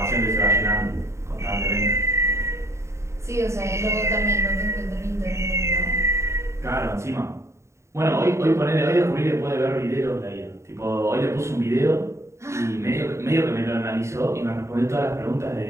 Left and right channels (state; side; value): late; left; 0.14 ms